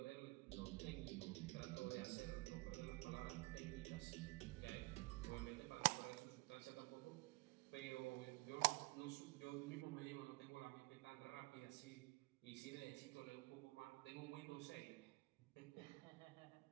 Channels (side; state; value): left; quieter; 24.0 dB